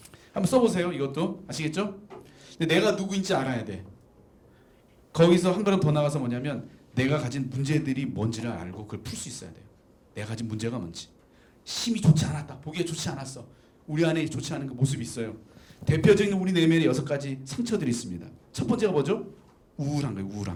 한번 써보세요. 이것도 아시겠죠? 근데 내가 누구인지 알아야 돼. 거기서 한 걸음 더 나가서 뭐냐면 내가 가진 문제들이 뭔지를 알고 그걸 풀 수 있어야 돼요. 내가 가진 문제가 뭔지. 힘이 좋지 않았다. 보기에 좋지 않았어. 우리 안에 좋지 않은 그 모습이 있어요. 대표적인 우리 내면에 6가지 상처들이 있습니다. 첫 번째가 뭐죠? 우울한 거예요.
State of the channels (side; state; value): both; identical; correlation 1.00